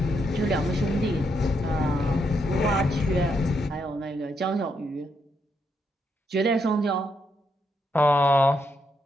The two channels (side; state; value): both; normal; correlation 0.79